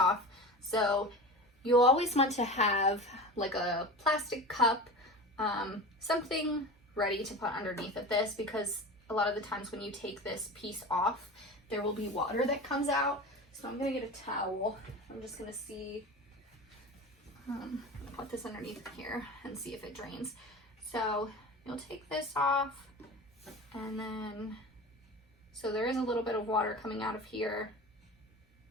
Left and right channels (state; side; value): normal; both; correlation 0.31